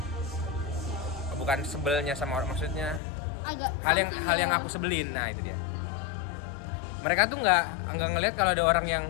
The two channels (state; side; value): drops out; right; at 3.0 s